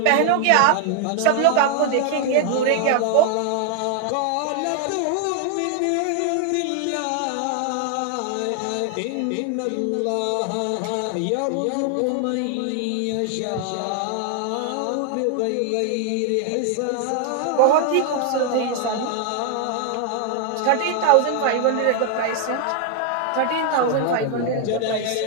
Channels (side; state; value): both; different; correlation 0.00